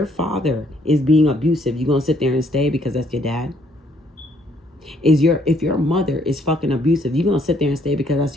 father is being abusive, you going to sit there and stay because that's your dad? If your mother is fucking abusive, you going to sit there and stay because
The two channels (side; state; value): both; normal; correlation 0.67